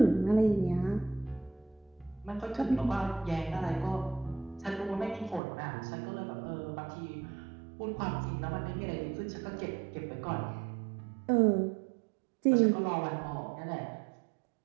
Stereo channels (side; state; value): left; drops out; at 5.4 s